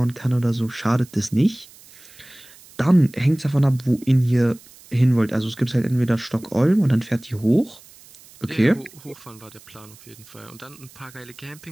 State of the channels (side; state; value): right; noise; hiss, 23 dB below the sound